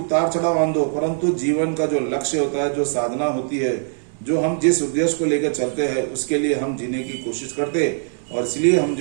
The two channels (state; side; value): silent; left; 65 dB below the other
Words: चढ़ाव आंदो, परंतु जीवन का जो लक्ष्य होता है, जो साधना होती है, जो हम जिस उद्देश्य को लेकर चलते हैं उसके लिए हम जीने की कोशिश करते, और इसलिए हम